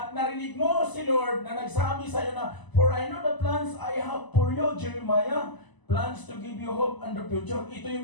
narinig mo si Lord na nagsabi sa iyo na, for I know the plans I have for you, Jeremiah, plans to give you hope and the future. Ito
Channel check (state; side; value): late; right; 1.0 ms